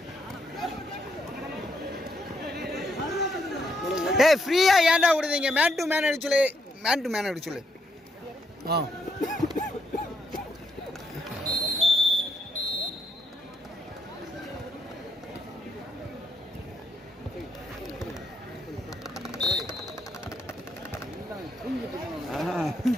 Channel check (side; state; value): both; normal; correlation 0.76